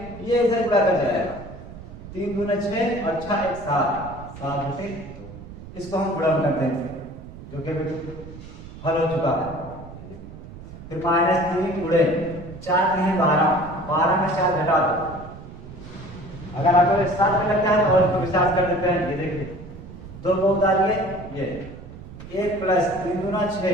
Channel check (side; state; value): right; noise; rumble, 15 dB below the sound